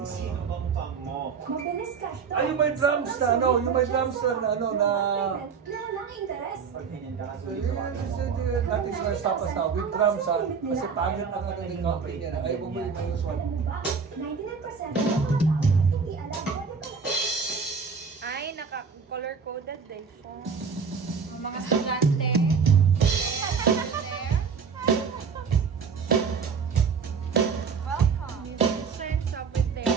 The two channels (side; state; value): left; quieter; 5.8 dB